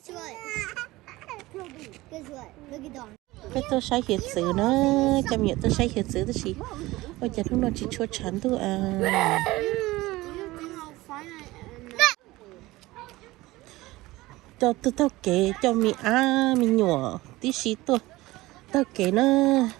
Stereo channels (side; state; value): left; quieter; 19.1 dB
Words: Guess what? Look at Don. Cái tôi sai hiện sự nó chăm nhận tôi sai hiện sự tôi chỉ ôi giờ lúc nó chỉ chua chán thôi à cho tôi tao kể cho mi mi nhỏ tí xí tôi tao kể nó